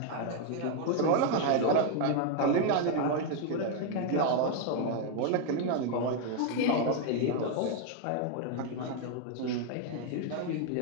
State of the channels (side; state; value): both; different; correlation 0.01